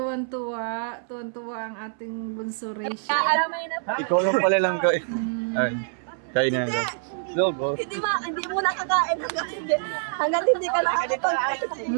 Tuwan-tuwa ang ating bunso Rachel. Ikaw lang pala lang kain. Ay, kain na nila. Logo. Hindi mo nakakain hanggang hindi ka nakakapag.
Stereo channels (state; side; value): silent; left; 61 dB below the other